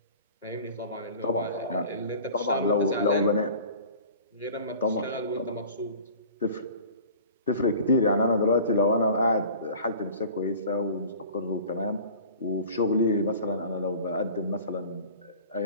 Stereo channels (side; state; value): both; inverted; correlation -0.42